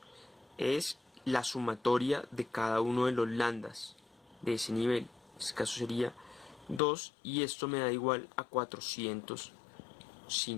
es la sumatoria de cada uno de los lambdas de ese nivel. En este caso sería 2 y esto me da igual a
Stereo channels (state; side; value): drops out; right; at 6.8 s